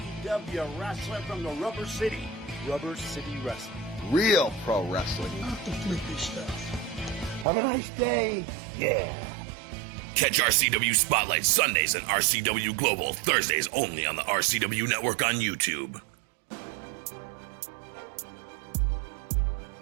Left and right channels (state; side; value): drops out; left; at 7.5 s